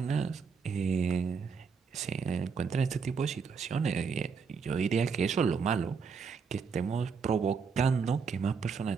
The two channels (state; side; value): quieter; left; 5.6 dB